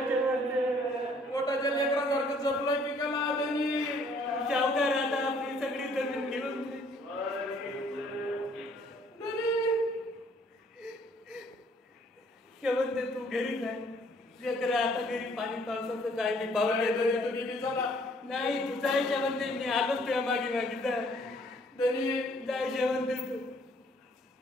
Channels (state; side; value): normal; both; correlation 0.62